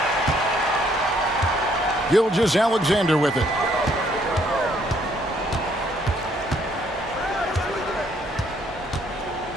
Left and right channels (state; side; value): normal; both; correlation 0.67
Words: Gilgeous-Alexander with it.